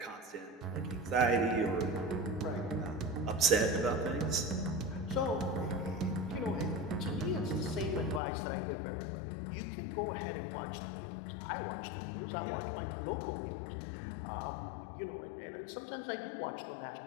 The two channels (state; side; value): drops out; right; at 8.2 s